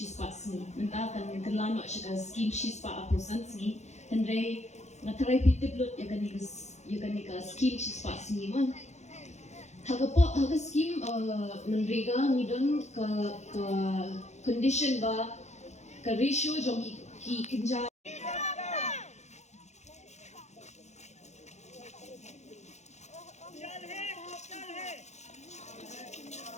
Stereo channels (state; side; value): late; right; 0.33 ms